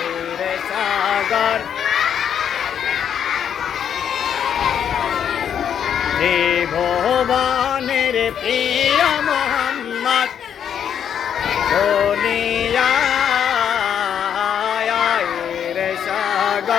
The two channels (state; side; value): quieter; right; 8.6 dB